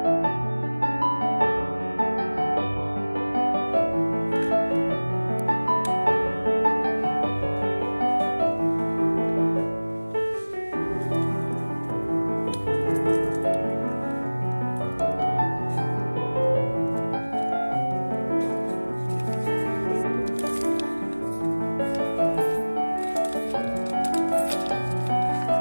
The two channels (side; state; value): both; inverted; correlation -1.00